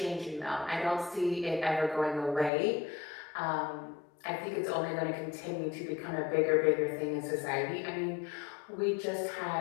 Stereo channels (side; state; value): right; drops out; at 2.5 s